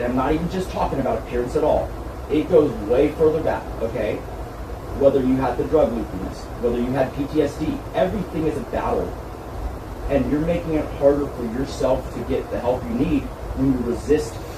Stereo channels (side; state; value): both; identical; correlation 1.00